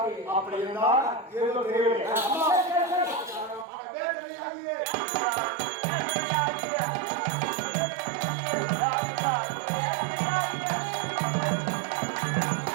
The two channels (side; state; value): left; drops out; at 3.7 s